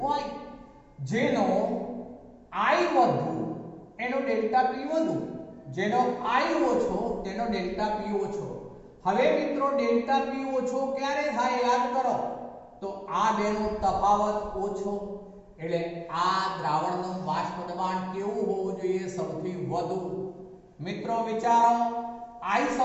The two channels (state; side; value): identical; both; correlation 1.00